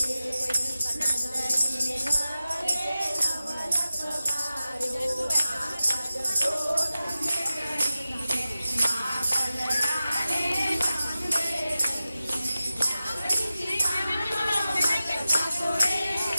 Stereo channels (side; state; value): both; inverted; correlation -0.94